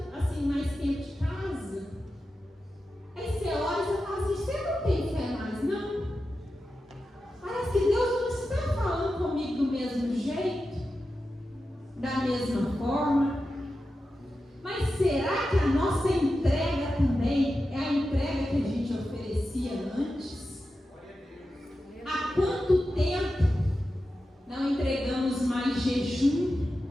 assim, mais tempo de casa, aí você ora e você fala assim, você não tem fé mais, não? Parece que Deus não está falando comigo do mesmo jeito, da mesma forma. Mas será que a nossa entrega também é a entrega que a gente oferecia antes? Há quanto tempo não entregamos mais jejum?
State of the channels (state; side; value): normal; both; correlation 0.91